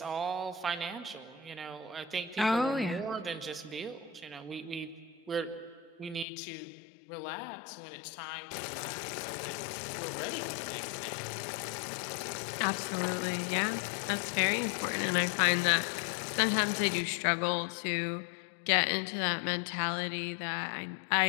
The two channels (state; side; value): drops out; right; at 6.2 s